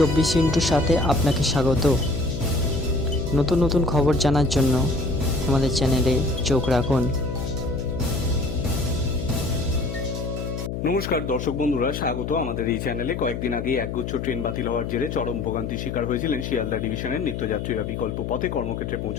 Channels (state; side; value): noise; left; hum, 5 dB below the sound